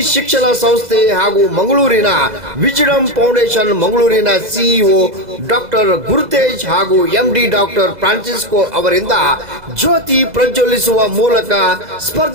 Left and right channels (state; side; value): late; left; 2.0 ms